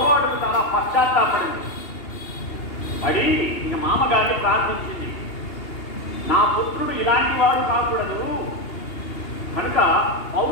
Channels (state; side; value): late; right; 2.8 ms